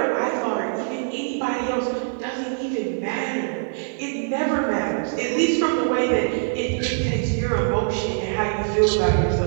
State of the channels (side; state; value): left; silent; digital silence